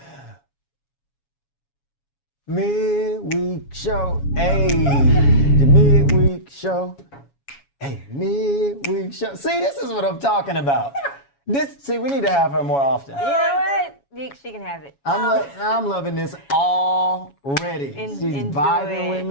Midweek Show. Hey, the Midweek Show. Hey, Midweek Show. See, this is what I'm talking about. See, we need to have her more often. You know what? She can have it. I'm loving this already. She's enjoy vibing it. with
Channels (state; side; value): late; right; 7.2 ms